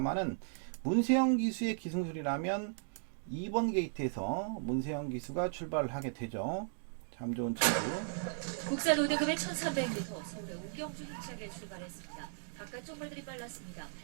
문세영 기수의 기승술이라면 2번 게이트에서 문세영 기수가 출발을 하게 되죠. 참 좋은 친구. 국산 5등급의 1300m 서울의 우경주 힘차게 출발했습니다. 바깥쪽 말들이 빨랐습니다.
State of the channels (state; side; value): silent; left; digital silence